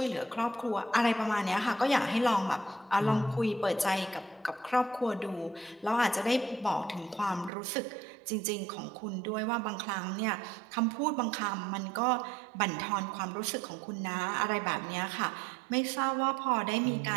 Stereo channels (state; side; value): drops out; left; at 7.5 s